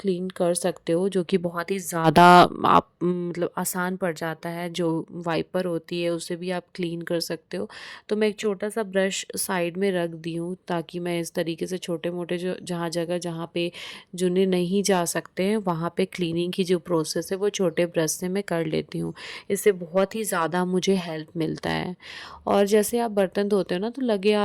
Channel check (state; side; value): identical; both; correlation 1.00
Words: कर सकते हो, जो कि बहुत ही ज़्यादा आप मतलब आसान पड़ जाता है। जो वाइपर होती है उससे भी आप क्लीन कर सकते हो। तो मैं एक छोटा सा ब्रश साइड में रख दी हूँ ताकि मैं इस तरीके से छोटे मोटे जो जहाँ पे जुने नहीं जा सकते हैं वहाँ पे क्लीनिंग की जो प्रोसेस है वो छोटे ब्रश से मैं कर लेती हूँ। इससे बहुत ही ज़्यादा मुझे हेल्प मिलता है। और जैसे आप बर्तन धोते हो ना, तो लगे